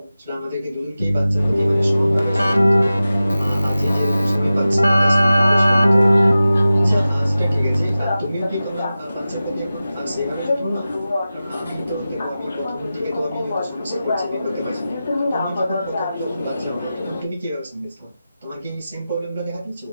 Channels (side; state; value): both; inverted; correlation -0.95